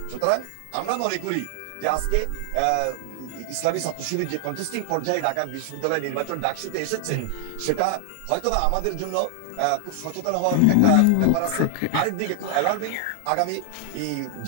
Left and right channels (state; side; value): different; both; correlation 0.00